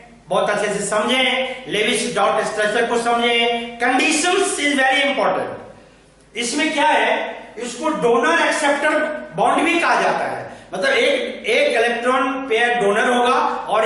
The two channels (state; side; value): identical; both; correlation 1.00